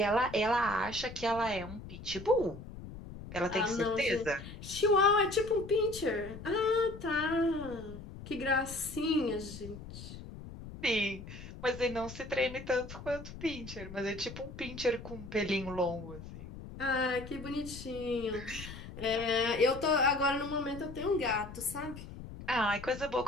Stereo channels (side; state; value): left; noise; rumble, 12 dB below the sound